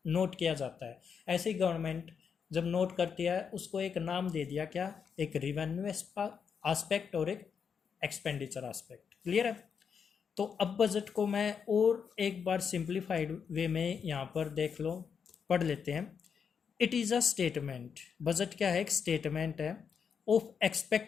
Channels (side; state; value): right; quieter; 6.7 dB